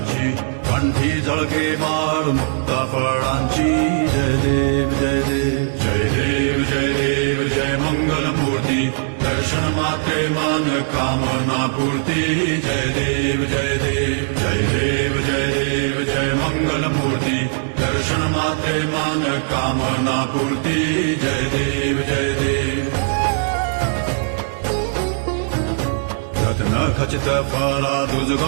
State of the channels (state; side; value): silent; left; digital silence